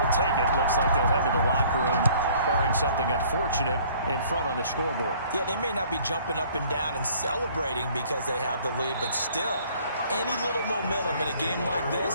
take it. Looks like they'll head to the locker room, barring something unfortunate in front on the scoreboard. Yeah, they may not be jumping up and down and celebrating because they have the lead, but still, any little momentum in a game like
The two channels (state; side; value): inverted; both; correlation -0.56